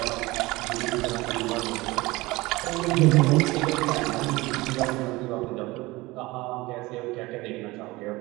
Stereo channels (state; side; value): quieter; left; 21.2 dB